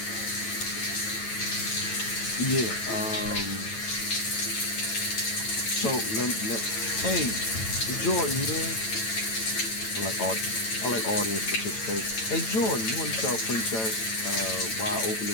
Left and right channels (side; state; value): right; late; 9.0 ms